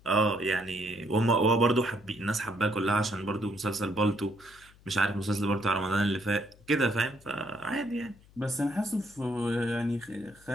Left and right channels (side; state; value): left; noise; hum, 26 dB below the sound